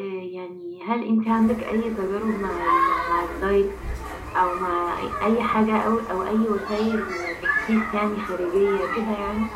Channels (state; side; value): identical; both; correlation 1.00